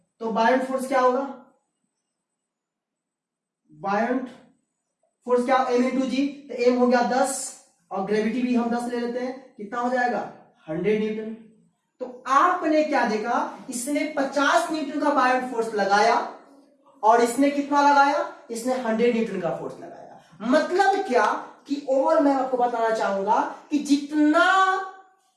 तो बायोट फोर्स क्या होगा? बायोट फोर्स क्या? m इंटू जी, तो m हो गया 10, और ग्रेविटी भी हम 10 ले लेते हैं, कितना हो जाएगा? 100 न्यूटन। तो आपने क्या देखा? इसने 50 न्यूटन का बायोट फोर्स लगाया, और इसने कितना लगाया? इसने 100 न्यूटन का फोर्स लगाया। मतलब क्या कि ओवरऑल मैं आपको बताना चाहूंगा कि जितना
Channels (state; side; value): identical; both; correlation 1.00